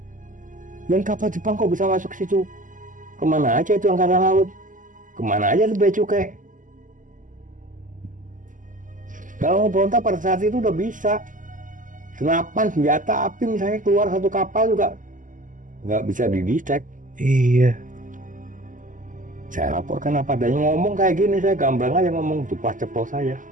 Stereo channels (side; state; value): left; late; 0.38 ms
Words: Dan kapal Jepang kok bisa masuk ke situ? Kemana aja itu angkatan laut? Kemana aja itu bea cukai? Kalau mau berontak pada saat itu udah bisa. Senapan, senjata api misalnya keluar satu kapal juga nggak bisa didetect. Iya. Saya laporkan apa adanya, ngomong kayak gini, saya gamblang aja ngomong, ceplos saja.